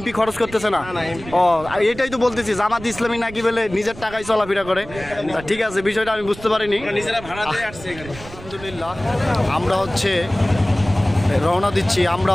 খরচ করতেছে না? ও এটাই তো বলতেছি, জামাত ইসলামী নাকি বলে নিজের টাকায় চলাফেরা করে। ঠিক আছে, বিষয়টা আমি বুঝতে পারিনি। আলহামদুলিল্লাহ, আমরা হচ্ছে রওনা দিচ্ছি, আমরা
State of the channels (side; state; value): right; noise; rumble, 16 dB below the sound